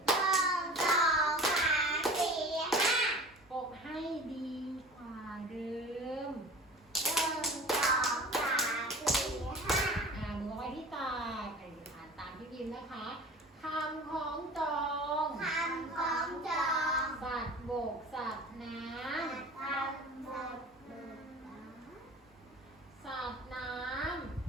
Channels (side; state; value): both; normal; correlation 0.40